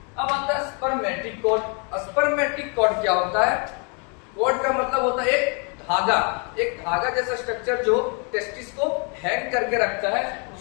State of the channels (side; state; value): right; quieter; 36.2 dB